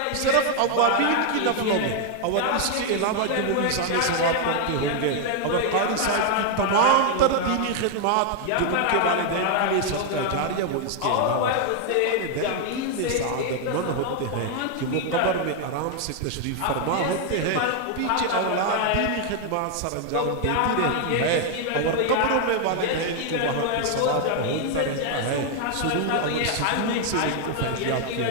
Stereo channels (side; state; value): both; different; correlation 0.00